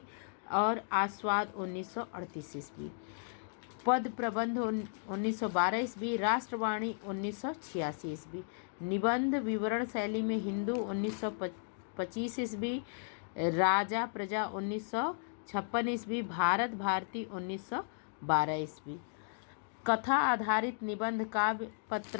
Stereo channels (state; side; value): silent; right; digital silence